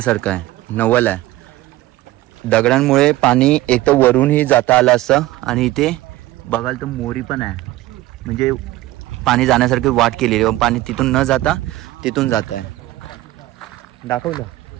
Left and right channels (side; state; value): left; quieter; 16.8 dB